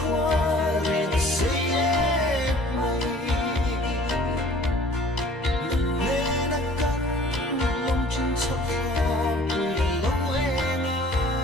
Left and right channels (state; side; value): normal; both; correlation 0.51